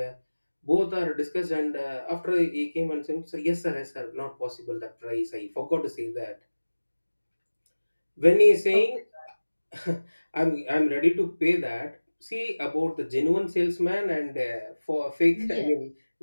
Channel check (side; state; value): both; inverted; correlation -1.00